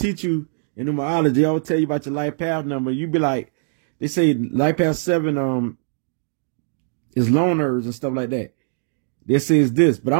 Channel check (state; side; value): silent; left; digital silence